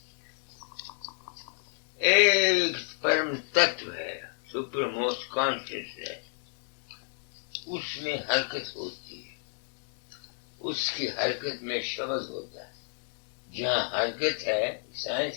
ایک پرم تتو ہے, سپر موسٹ کانشیسنیس, اس میں حرکت ہوتی ہے. اس کی حرکت میں شبد ہوتا ہے. جہاں حرکت ہے,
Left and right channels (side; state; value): right; silent; 57 dB below the other